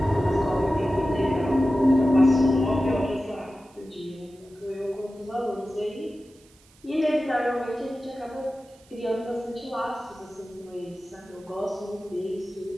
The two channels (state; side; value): noise; right; hiss, 29 dB below the sound